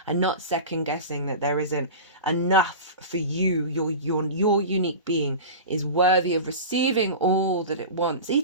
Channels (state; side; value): inverted; both; correlation -0.31